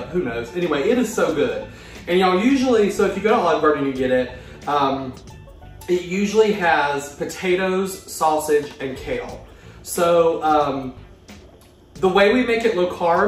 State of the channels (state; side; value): identical; both; correlation 1.00